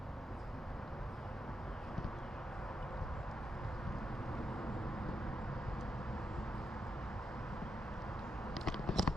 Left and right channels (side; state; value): both; normal; correlation 0.84